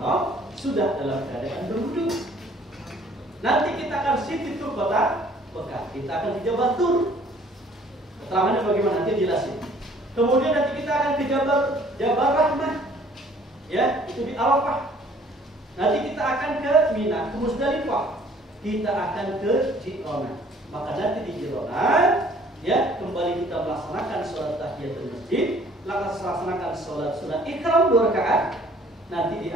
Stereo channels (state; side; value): normal; both; correlation 0.56